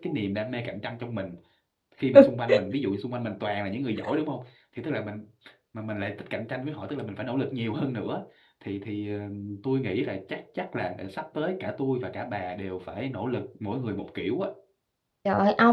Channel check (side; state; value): both; identical; correlation 1.00